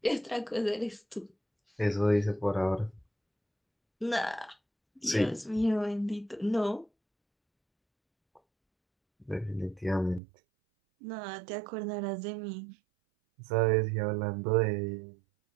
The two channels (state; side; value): drops out; left; at 10.2 s